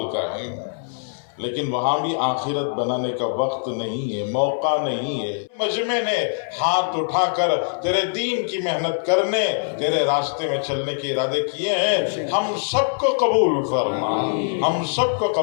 का है। लेकिन वहाँ भी आखिरत बनाने का वक्त नहीं है, मौका नहीं है। मजमे ने हाथ उठाकर तेरे दीन की मेहनत करने, तेरे रास्ते में चलने के इरादे किए हैं। हम सबको कबूल फरमा, हम सबको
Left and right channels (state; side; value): silent; right; 64 dB below the other